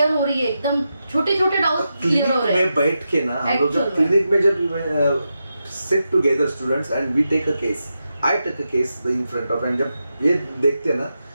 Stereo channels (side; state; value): both; inverted; correlation -0.88